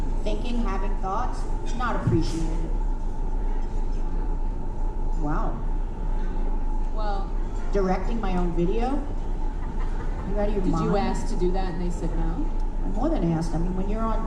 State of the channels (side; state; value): both; identical; correlation 1.00